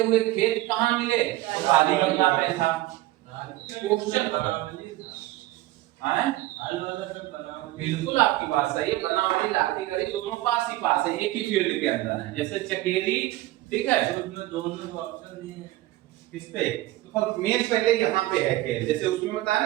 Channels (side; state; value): left; quieter; 17.0 dB